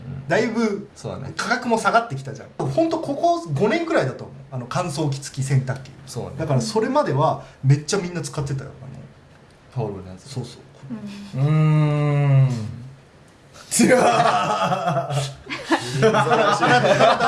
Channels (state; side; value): identical; both; correlation 1.00